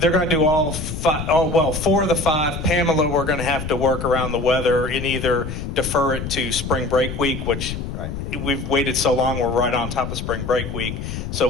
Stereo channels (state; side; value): noise; left; rumble, 6 dB below the sound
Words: They're going to do all 5, 4 of the 5. Pamela, we're going to have to work around the weather and either defer it to spring break week, which we've waited so long, we're right on top of spring break week, so